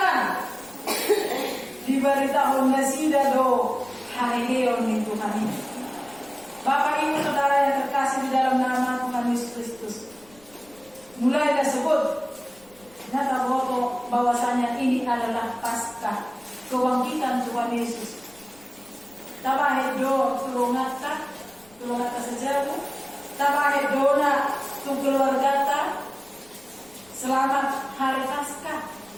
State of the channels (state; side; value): noise; left; rumble, 28 dB below the sound